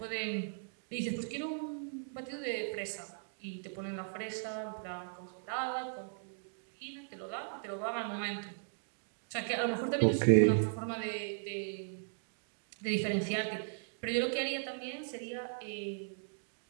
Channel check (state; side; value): silent; left; digital silence